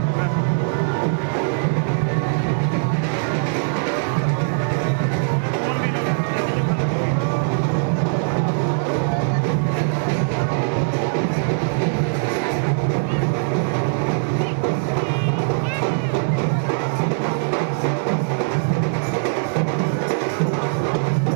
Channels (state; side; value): silent; left; digital silence